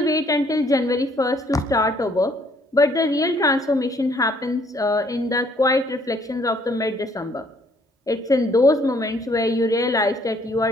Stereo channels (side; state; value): both; normal; correlation 0.64